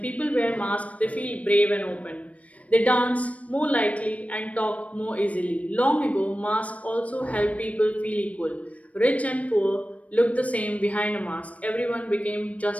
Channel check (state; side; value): late; right; 0.066 ms